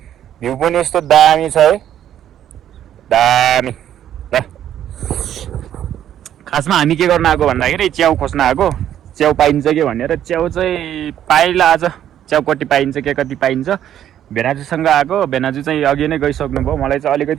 भ्यू पनि यस्तो दामी छ है, दामी। ल खासमा हामी के गर्न आएको भन्दाखेरि च्याउ खोज्न आएको। च्याउ पाइन्छ कि भनेर च्याउ चाहिँ पाइला आज। च्याउ कति पाइन्छ के कति पाइन्छ भेनाजुसँग आएको। भेनाजु चाहिँ अघि नै गइसक्नु भयो। मलाई चाहिँ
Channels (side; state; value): left; quieter; 10.8 dB